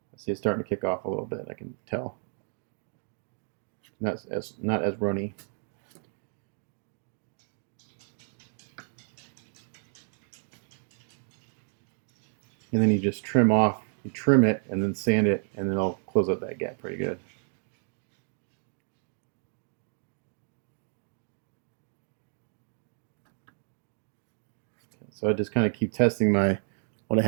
see it's starting to kick off a little bit. I can tell. Not as runny. And then you just trim it and then sand it, and then it'll close up that gap pretty good. So I just kind of keep testing what I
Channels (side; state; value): left; silent; 57 dB below the other